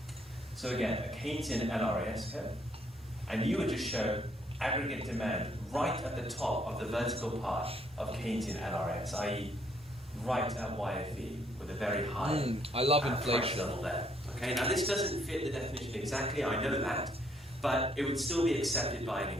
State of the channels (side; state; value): both; normal; correlation 0.69